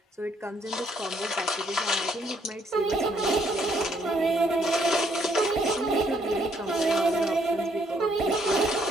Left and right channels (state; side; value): normal; both; correlation 0.69